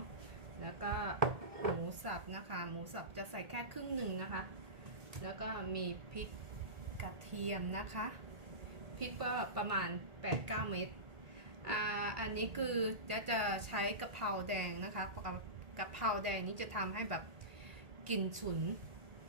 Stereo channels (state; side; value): late; left; 1.8 ms